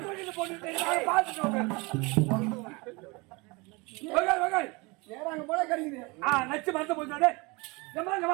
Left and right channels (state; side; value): quieter; left; 26.6 dB